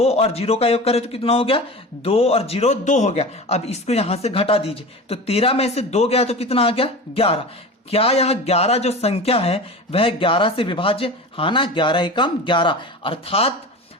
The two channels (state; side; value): normal; both; correlation 0.32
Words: और 0 का योग करें तो कितना हो गया, 2 और 0 2 हो गया। अब इसको यहां से घटा दीजिए तो 13 में से 2 गया तो कितना आ गया, 11। क्या यह 11 जो संख्या है वह 11 से विभाज्य, हाँ ना, 11 एकम 11, अर्थात